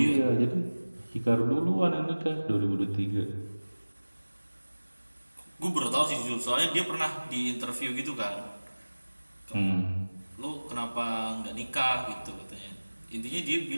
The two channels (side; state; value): both; inverted; correlation -1.00